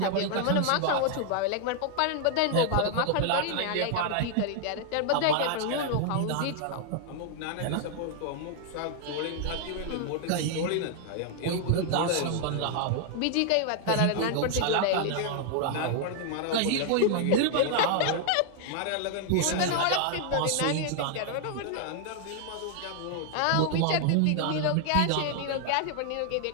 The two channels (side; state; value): both; different; correlation 0.00